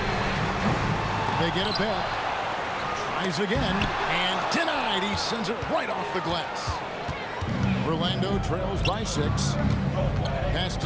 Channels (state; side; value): identical; both; correlation 1.00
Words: They get it back. Tries again, and denied. He sends it right off the glass. Orlando trails by 6. Pass